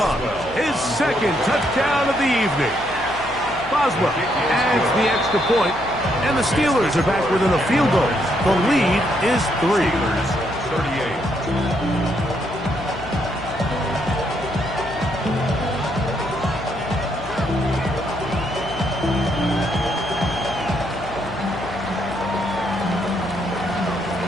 His second touchdown of the evening. Boswell adds the extra point, and the Steelers are back within a field goal. The lead is 3. 38.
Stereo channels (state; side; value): noise; left; hum, 16 dB below the sound